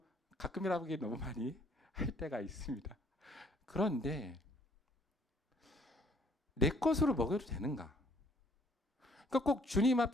가끔이라고 하기엔 너무 많이 할 때가 있습니다. 그런데 내 것으로 먹여도 되는가? 그러니까 꼭 주님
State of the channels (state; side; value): normal; both; correlation 0.62